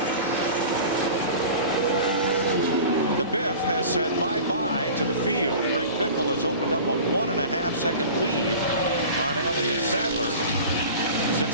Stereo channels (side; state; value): both; inverted; correlation -0.38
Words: The Biff has said bye-bye to the field. Greg Biffle has opened up a 1.5-second lead on Elliott Sadler